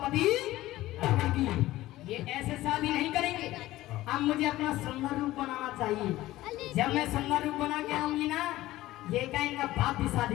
रावण की। ये ऐसे शादी नहीं करेंगे। अब मुझे अपना सुंदर रूप बनाना चाहिए। जब मैं सुंदर रूप बना के आऊंगी ना, ये का इनका बाप भी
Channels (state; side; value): quieter; right; 16.4 dB